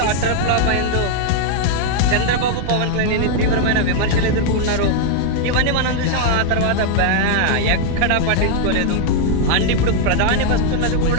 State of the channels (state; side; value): different; both; correlation 0.00